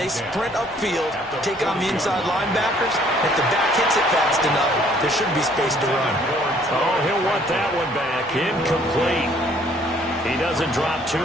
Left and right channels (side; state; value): left; noise; hum, 28 dB below the sound